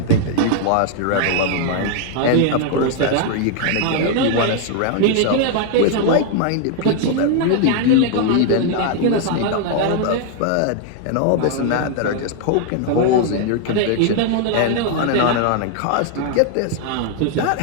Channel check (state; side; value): different; both; correlation 0.00